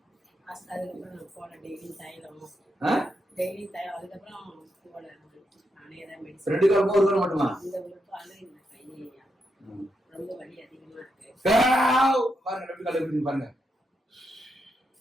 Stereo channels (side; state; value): both; normal; correlation 0.83